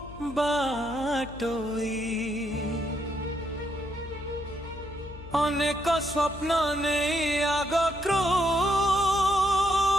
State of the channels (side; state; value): left; noise; hum, 15 dB below the sound